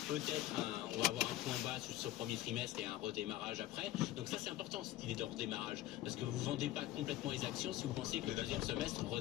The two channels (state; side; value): quieter; right; 14.9 dB